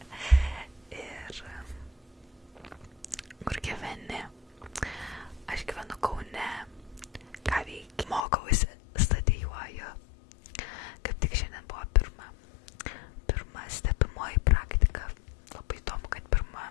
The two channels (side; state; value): right; drops out; at 8.2 s